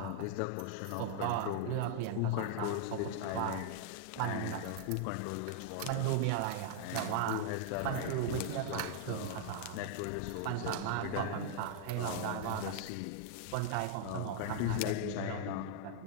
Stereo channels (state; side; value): different; both; correlation -0.01